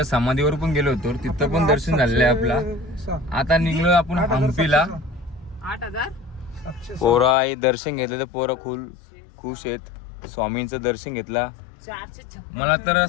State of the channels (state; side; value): drops out; right; at 7.4 s